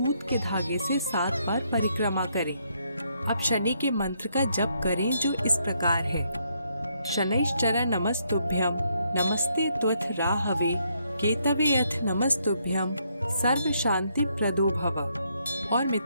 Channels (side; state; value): both; inverted; correlation -0.74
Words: के धागे से 7 बार परिक्रमा करें। अब शनि के मंत्र का जप करें, जो इस प्रकार है: शनैश्चर नमस्तुभ्यं, नमस्ते त्वथ राहवे, केतवे अथ नमस्तुभ्यं, सर्व शांति प्रदो भव। और